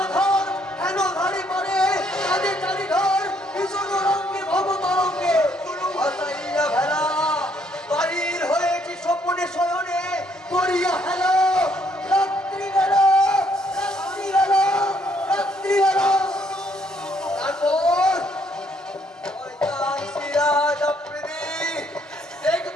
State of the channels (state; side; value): normal; both; correlation 0.68